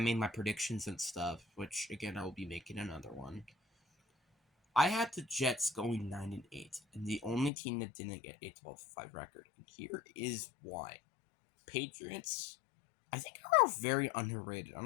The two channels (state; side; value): drops out; right; at 7.5 s